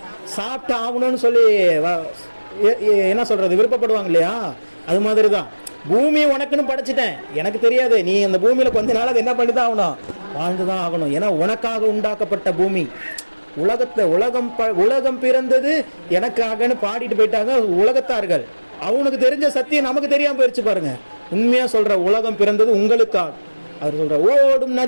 சாப்பிட்டு ஆகணும்னு சொல்லி என்ன சொல்றது, விருப்பப்படுவாங்க இல்லையா? அது மாதிரி தான் பூமி உனக்குன்னு படைச்சிட்டேன், எனக்கு தெரியாது, நீ அந்த பூமியில கொஞ்ச நாள் அதை என்ன பண்ணி தான் ஆகணும், வாழ்ந்துதான் ஆகணும். ஏன்னா உனக்காக உண்டாக்கப்பட்ட பூமி. உலகம் பிறந்தது எனக்காகன்னு பாடிட்டு போயிட்டாங்க உலகத்தார்கள். அவனுக்கு தெரிஞ்ச சத்தியம் நமக்கு தெரியாம போயிடுச்சு பாருங்க. உண்மையா சொல்ற, உலகம் பிறந்தது உங்களுக்காக. அவர் சொல்ற ஓடும்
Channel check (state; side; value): inverted; both; correlation -1.00